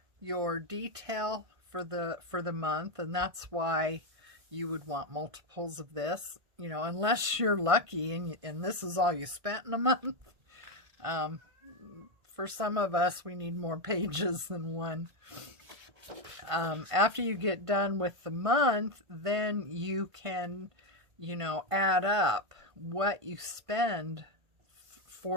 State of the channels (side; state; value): left; late; 1.5 ms